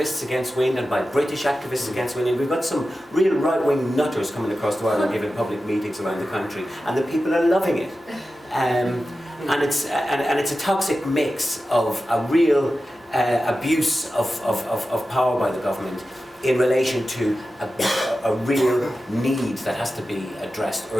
against wind and by British activists against wind, and we've got some real right-wing nutters coming across the Ireland giving public meetings around the country, and the people are loving it. And it's a toxic mix of a real abuse of power by the government in relation to a real need that has to be addressed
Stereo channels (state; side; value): normal; both; correlation 0.93